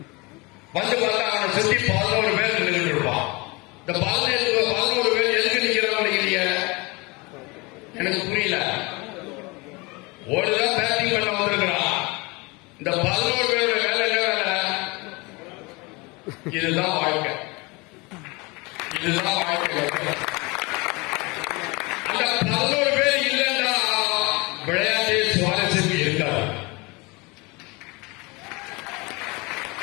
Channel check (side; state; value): right; quieter; 26.0 dB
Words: வந்து பார்த்தா அவனை சுத்தி 11 பேர் நின்றுட்டு இருப்பான். இந்த 11 பேர் எதுக்கு நிக்கிறான்னு நினைக்கிறீங்க? எனக்கு புரியல. ஒருதான் பேட்டிங் பண்ண வந்திருக்கிறான். இந்த 11 பேரோட வேலை என்ன வேலை? இதுதான் வாழ்க்கை. இதுதான் வாழ்க்கை. அந்த 11 பேர் இல்லைன்னா விளையாட்டு சுவாரஸ்யம் இருக்காது.